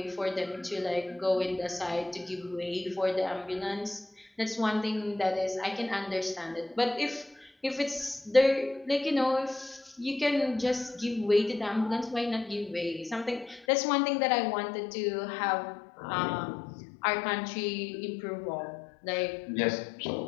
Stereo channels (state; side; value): drops out; right; at 13.7 s